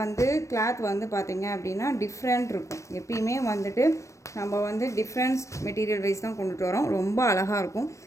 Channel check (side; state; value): right; late; 0.15 ms